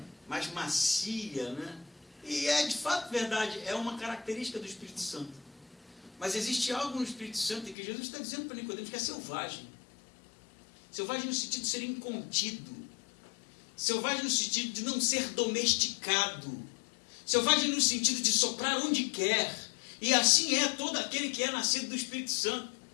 mais macia, né? E é de fato verdade, é uma característica do Espírito Santo. Mas existe algo no Espírito Santo que Jesus está dizendo para Nicodemos que é selvagem. Selvagem no sentido de ser incontido. Selvagem no sentido de não ser domesticado. Selvagem no sentido de soprar onde quer. E assim é todo aquele que é nascido do Espírito Santo.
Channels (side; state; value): right; drops out; at 7.8 s